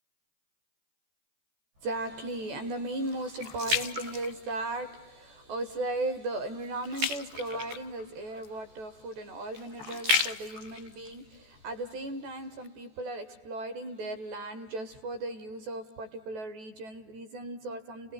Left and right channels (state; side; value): late; left; 14 ms